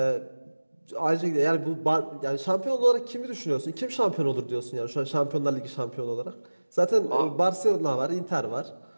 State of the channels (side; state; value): both; inverted; correlation -1.00